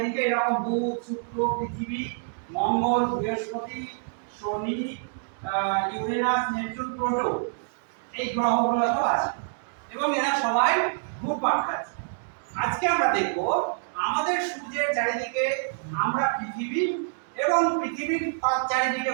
এরকম বুধ, শুক্র, পৃথিবী, মঙ্গল, বৃহস্পতি, শনি, ইউরেনাস, নেপচুন, প্লুটো, এই গ্রহগুলো তো আছে এবং এরা সবাই ঘুরপাক খাচ্ছে। আজকে আমরা দেখব আমাদের সূর্যের চারিদিকে আমরা পৃথিবী এবং পৃথিবীর চারিদিকে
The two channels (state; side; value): silent; left; digital silence